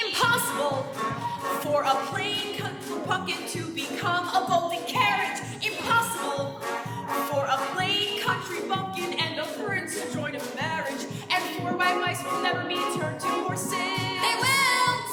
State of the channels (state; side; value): identical; both; correlation 1.00